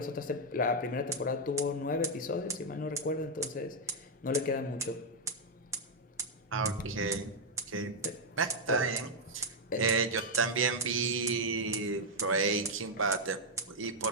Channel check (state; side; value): normal; both; correlation -0.01